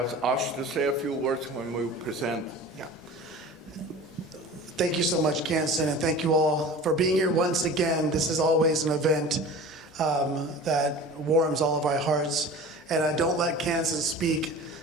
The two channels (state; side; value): normal; both; correlation 0.38